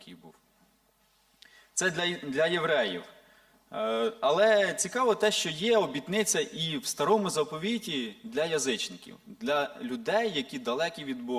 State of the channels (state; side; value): identical; both; correlation 1.00